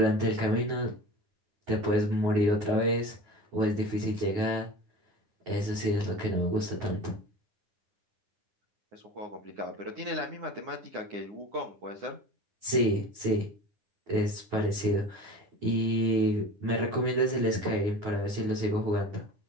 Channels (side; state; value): left; late; 9.9 ms